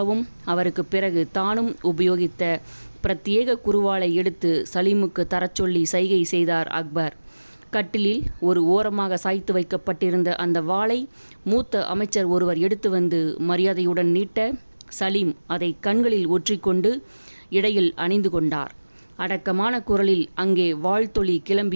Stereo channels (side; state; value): both; inverted; correlation -1.00